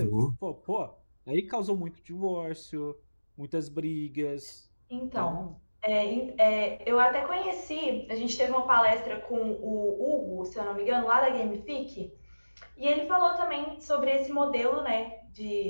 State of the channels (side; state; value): both; inverted; correlation -1.00